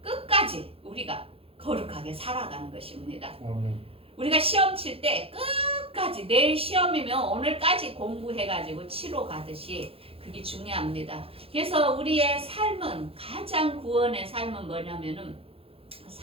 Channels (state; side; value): late; left; 0.27 ms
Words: 끝까지 우리가 거룩하게 살아가는 것입니다. 우리가 시험 칠 때 끝까지 내일 시험이면 오늘까지 공부해가지고 치러 가듯이 그게 중요합니다. 그래서 우리의 삶은 가장 구원의 삶은 뭐냐면은